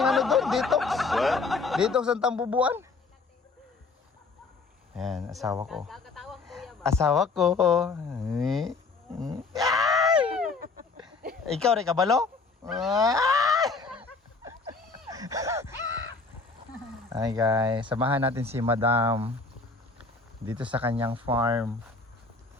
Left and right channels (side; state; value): right; quieter; 4.1 dB